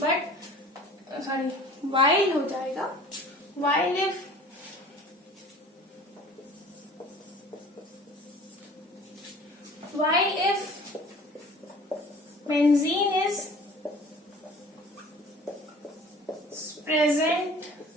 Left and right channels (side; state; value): both; normal; correlation 0.46